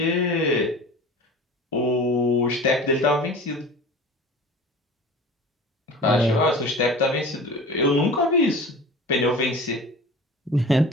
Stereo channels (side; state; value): both; normal; correlation 0.37